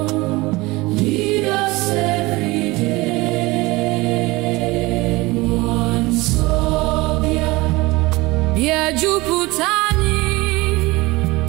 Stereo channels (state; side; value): quieter; left; 21.8 dB